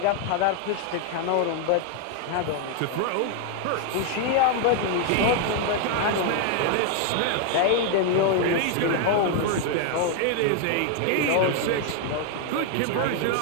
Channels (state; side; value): different; both; correlation 0.01